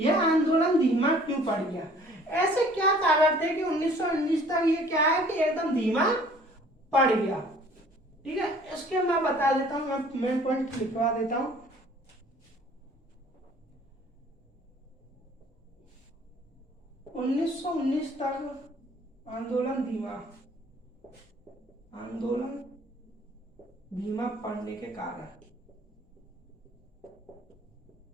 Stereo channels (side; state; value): both; normal; correlation 0.54